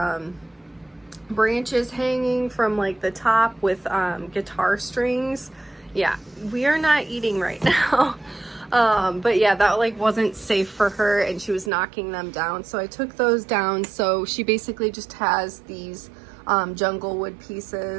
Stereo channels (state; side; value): drops out; left; at 11.7 s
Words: branches hanging from like the top with guitar strings. Yeah, we are not eating right now. But yeah, that like wasn't safe for her and she was knocking them down. So I took those down. So she basically just has these jungle wood